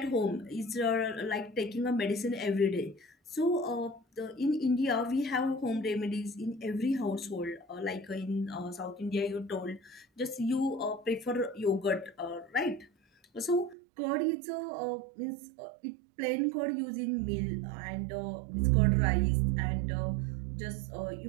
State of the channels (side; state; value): left; drops out; at 13.8 s